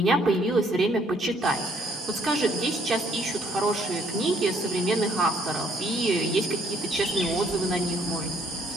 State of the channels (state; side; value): normal; both; correlation 0.65